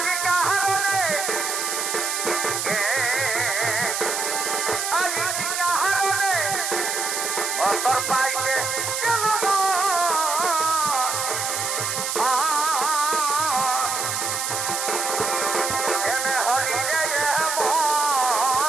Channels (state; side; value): noise; right; hiss, 2 dB below the sound